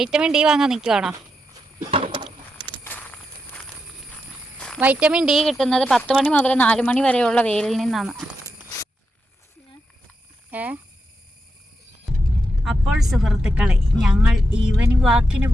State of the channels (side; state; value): both; normal; correlation 0.86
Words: ഡി വാങ്ങാൻ നിൽക്കുവാണോ? വൈറ്റമിൻ ഡി കിട്ടുന്നത് 10 മണി മുതൽ 4 മണി വരെയുള്ള വെയിലിൽ നിന്നാണ്. അപ്പോൾ സുഹൃത്തുക്കളെ, ഞങ്ങൾ ഈവനിങ് വാക്കിന്